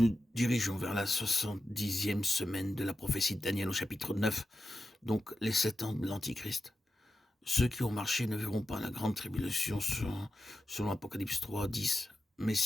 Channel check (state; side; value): normal; both; correlation 0.91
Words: dirigeons vers la 70e semaine de la prophétie de Daniel au chapitre 9, donc les 7 ans de l'Antichrist. Ceux qui ont marché ne verront pas la grande tribulation selon Apocalypse 3, 10. Mais